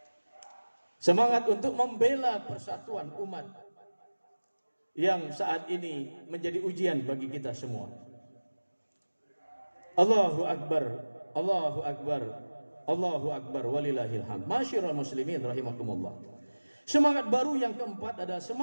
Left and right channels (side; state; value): both; inverted; correlation -1.00